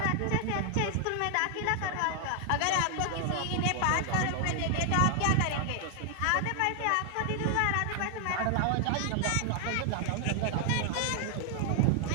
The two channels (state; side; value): different; both; correlation 0.00